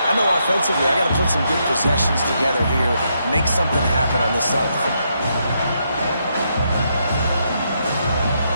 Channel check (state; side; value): inverted; both; correlation -0.78